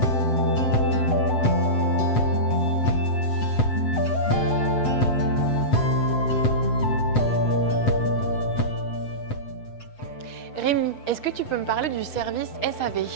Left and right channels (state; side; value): late; right; 7.9 ms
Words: Rémi, est-ce que tu peux me parler du service SAV?